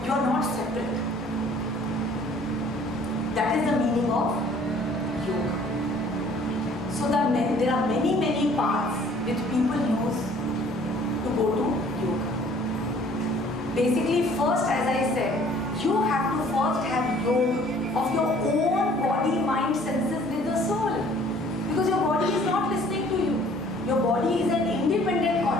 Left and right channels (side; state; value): both; normal; correlation 0.55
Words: You are not separate. That is the meaning of yoga. So there are many paths which people use to go to yoga. Basically, first, as I said, you have to first have yoga of your own body, mind, senses with the soul. Because your body is not listening to you. Your body is an independent